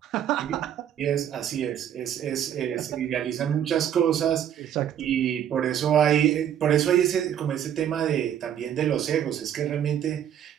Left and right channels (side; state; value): left; quieter; 9.9 dB